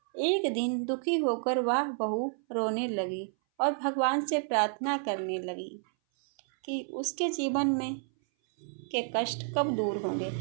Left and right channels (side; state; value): left; silent; 57 dB below the other